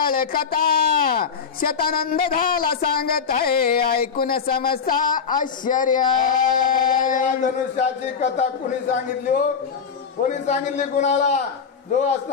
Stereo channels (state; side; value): quieter; right; 6.2 dB